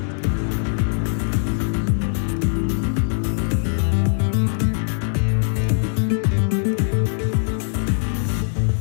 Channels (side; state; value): right; silent; 64 dB below the other